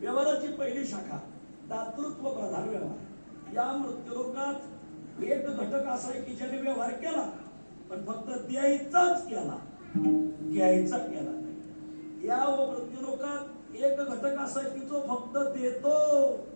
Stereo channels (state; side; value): inverted; both; correlation -1.00